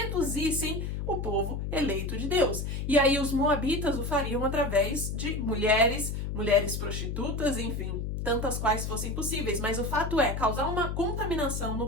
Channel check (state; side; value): noise; left; hum, 3 dB below the sound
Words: o povo eleito de Deus. E aí os Moabitas o fariam através de mulheres prostitutas, enfim, tantas quais fossem possíveis. Mas o fato é causar uma contaminação